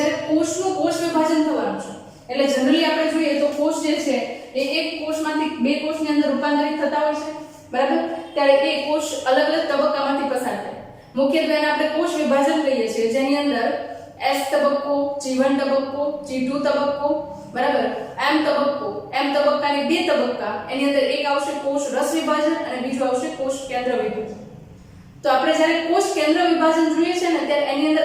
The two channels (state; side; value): identical; both; correlation 1.00